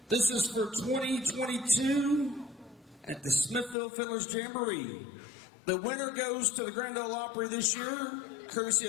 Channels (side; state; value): right; drops out; at 3.8 s